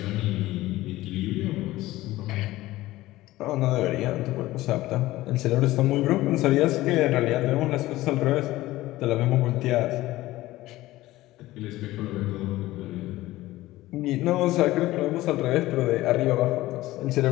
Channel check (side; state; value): right; quieter; 17.1 dB